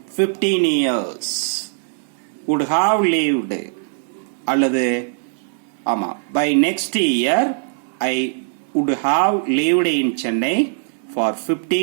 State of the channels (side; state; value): left; silent; digital silence